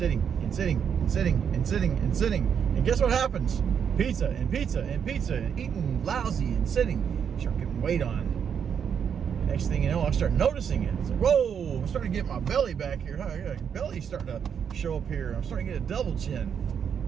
And guess what happens? Pizza and eating lousy and sitting. Start getting weight on. Next thing you know, I start noticing it. It's like, whoa, I'm starting to get my belly back here. My belly's starting to show up here. I'm starting to get a double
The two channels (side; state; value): left; quieter; 7.6 dB